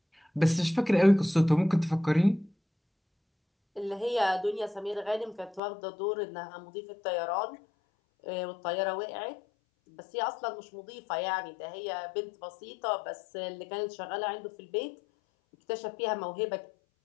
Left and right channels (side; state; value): right; drops out; at 5.6 s